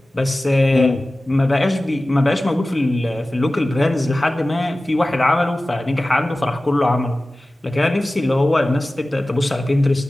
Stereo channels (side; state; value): both; normal; correlation 0.96